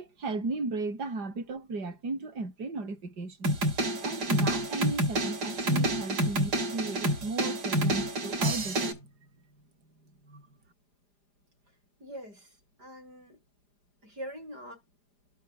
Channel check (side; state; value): left; late; 4.9 ms